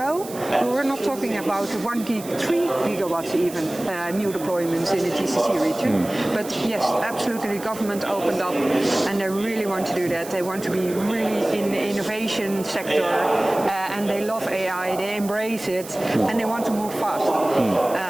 we were not talking about 1 gig, 3 gigawatts even new deployments in the GCC region. But yes, absolutely, the government opened up, and they really want to do that. They want to be really in the innovation sector, and they love AI, they embrace it, and they want to move fast.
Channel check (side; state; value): right; noise; hiss, 15 dB below the sound